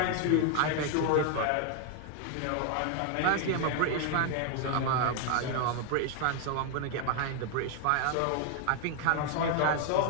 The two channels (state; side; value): different; both; correlation 0.00